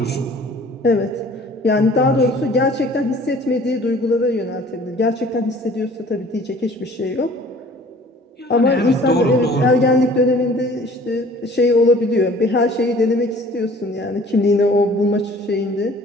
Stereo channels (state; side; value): normal; both; correlation 0.51